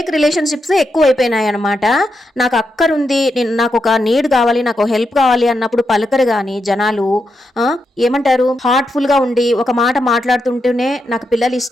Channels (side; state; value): both; normal; correlation 0.84